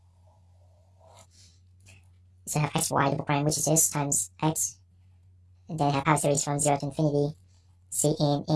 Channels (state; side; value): identical; both; correlation 1.00